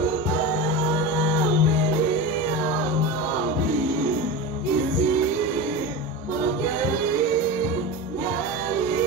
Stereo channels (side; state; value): both; normal; correlation 0.25